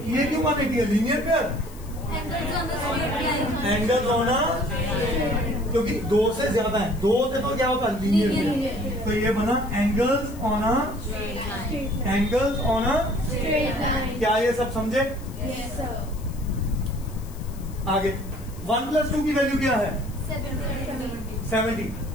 ये क्यों 180 है, लीनियर पेयर, एंगल होना, क्योंकि 2 से ज्यादा है, 2 से तो क्या होता है लीनियर पेयर। तो ये बना angles on a, angles on a, क्या ये सब समझे? आगे 1 प्लस 2 की वैल्यू क्या है 70।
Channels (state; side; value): noise; left; hiss, 21 dB below the sound